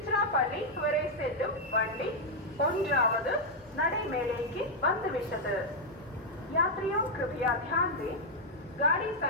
வரை செல்லும் வண்டி 1வது நடைமேடைக்கு வந்துவிட்டது. यात्रियों कृपया ध्यान दें, गाड़ी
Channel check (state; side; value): normal; both; correlation -0.02